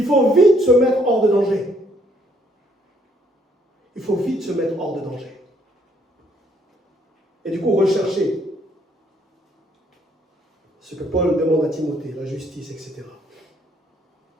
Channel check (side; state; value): both; normal; correlation 0.67